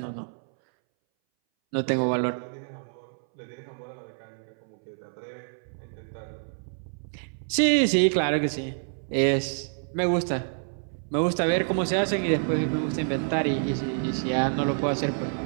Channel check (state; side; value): silent; left; 60 dB below the other